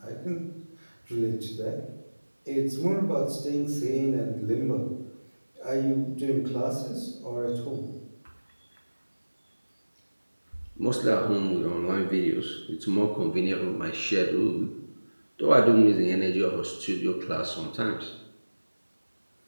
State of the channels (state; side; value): inverted; both; correlation -1.00